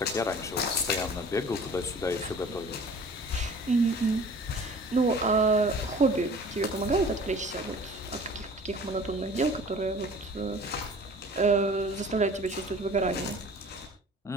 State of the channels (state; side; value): normal; both; correlation 0.46